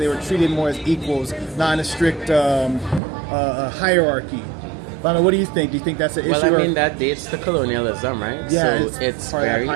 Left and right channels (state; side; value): drops out; left; at 3.0 s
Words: were treated more as equals, not in a strict hierarchy. Lana, what do you think? Do you think that's an issue? Well, I mean, that dates to colonialism, right? Yeah, so it's very